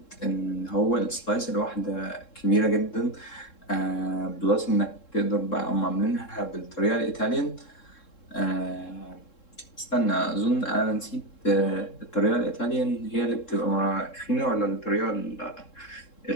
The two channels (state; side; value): late; right; 3.7 ms